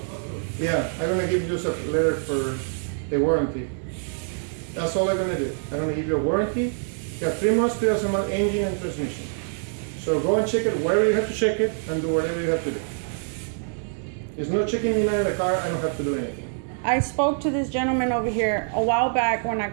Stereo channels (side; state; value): left; silent; digital silence